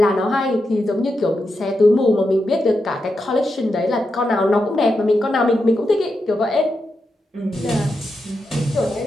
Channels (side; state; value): both; normal; correlation 0.87